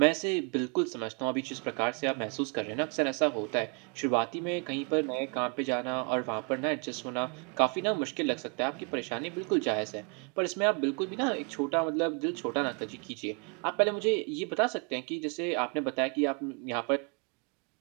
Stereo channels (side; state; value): left; quieter; 35.6 dB